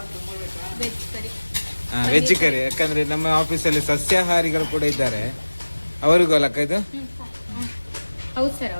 ವೆಜ್ ಕರಿ. ಯಾಕಂದ್ರೆ ನಮ್ಮ ಆಫೀಸಲ್ಲಿ ಸಸ್ಯಾಹಾರಿಗಳು ಕೂಡ ಇದ್ದಾರೆ, ಅವರಿಗೂ ಅಲ್ಲಕ್ಕ ಇದು. ಹೌದು ಸರ್,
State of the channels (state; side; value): inverted; both; correlation -1.00